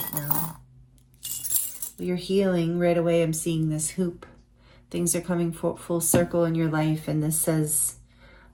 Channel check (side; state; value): both; identical; correlation 1.00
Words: now? Well, you're healing right away. I'm seeing this hoop. Things are coming full circle in your life, and this says